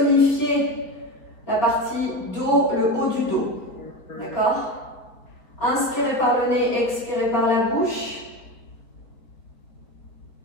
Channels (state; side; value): late; right; 4.5 ms